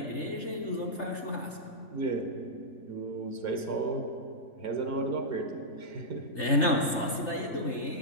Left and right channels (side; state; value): right; late; 3.3 ms